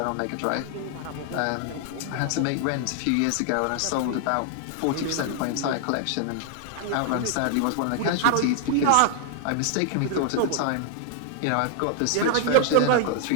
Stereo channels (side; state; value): both; different; correlation 0.00